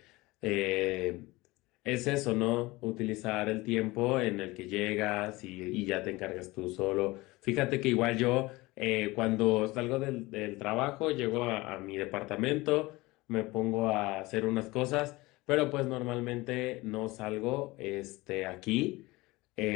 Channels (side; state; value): right; quieter; 21.3 dB